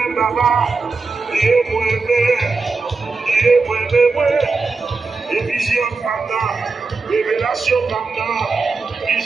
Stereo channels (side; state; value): left; quieter; 4.1 dB